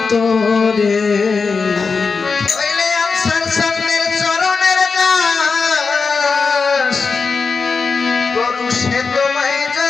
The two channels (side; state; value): right; quieter; 4.8 dB